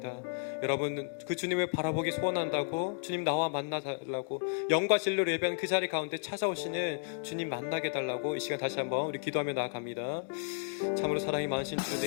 여러분, 그 주님을 바라보기 소원한다고, 주님 나와 만나달라고, 영과 진리로 예배한 그 자리 가운데 찾아오시는 주님 만나게 달라고 이 시간 다시 한번 우리 기도하며 나아갑니다. 참으로 사랑이 많으신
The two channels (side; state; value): right; silent; digital silence